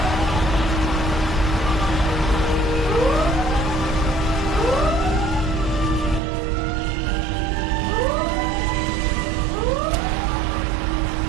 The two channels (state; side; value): drops out; left; at 6.2 s